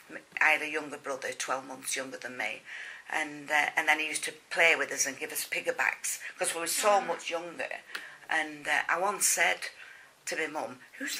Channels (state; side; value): identical; both; correlation 1.00